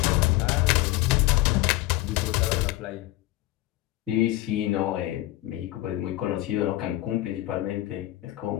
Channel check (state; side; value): quieter; right; 17.1 dB